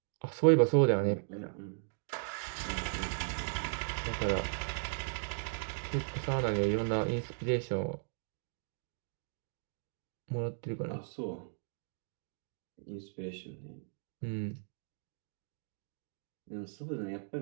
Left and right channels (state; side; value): silent; left; digital silence